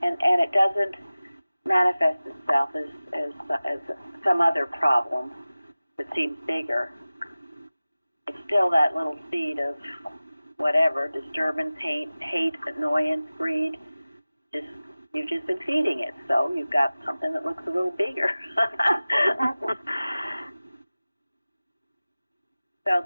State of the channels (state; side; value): inverted; both; correlation -0.97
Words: it doesn't manifest itself as some other problem that seems bigger. It's still that little seed of whatever, disturbance, hate, annoyance, greed. You've just been feeding it, so you've got something that looks a little bigger. So